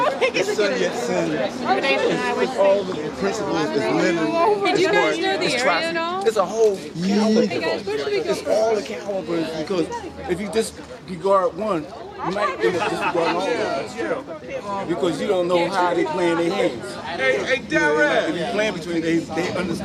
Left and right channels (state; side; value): identical; both; correlation 1.00